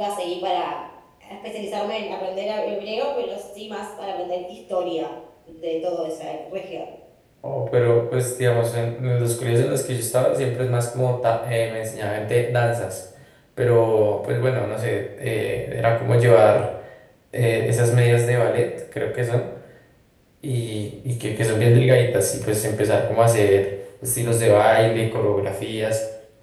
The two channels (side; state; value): both; identical; correlation 1.00